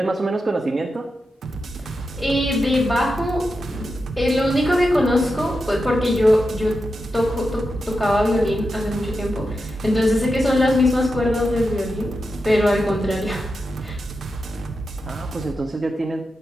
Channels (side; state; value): both; normal; correlation 0.89